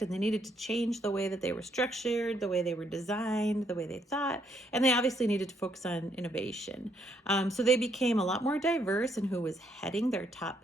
and they needed to change the way that they were structured, the way they were designed, the way they thought, and they obviously needed to focus on innovation. So they became a lot more diverse in who was heading their top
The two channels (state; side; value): normal; both; correlation 0.72